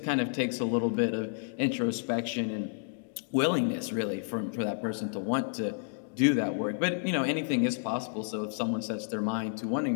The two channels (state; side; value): silent; right; digital silence